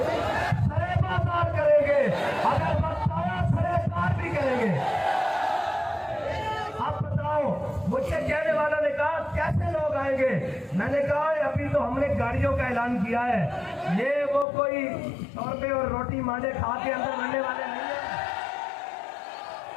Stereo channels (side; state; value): right; drops out; at 14.5 s